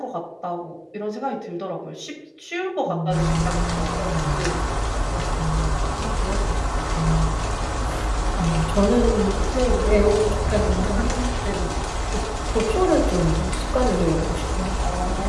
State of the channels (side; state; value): both; identical; correlation 1.00